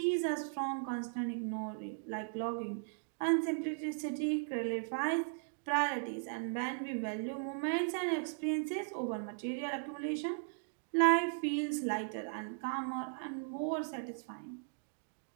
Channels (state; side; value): silent; left; digital silence